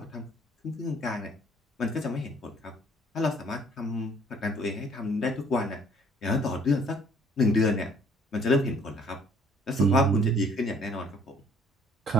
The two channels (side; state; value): both; normal; correlation 0.58